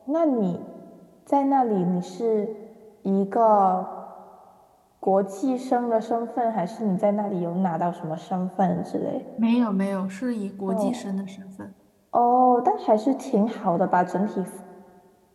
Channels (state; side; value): identical; both; correlation 1.00